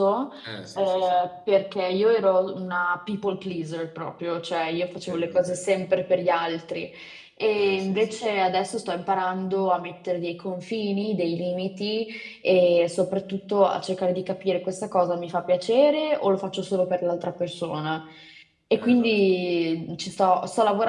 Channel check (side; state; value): both; identical; correlation 1.00